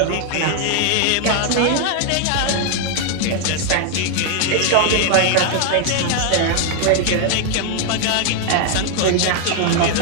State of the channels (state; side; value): different; both; correlation 0.00